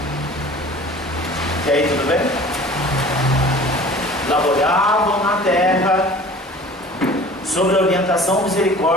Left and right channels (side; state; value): both; normal; correlation 0.44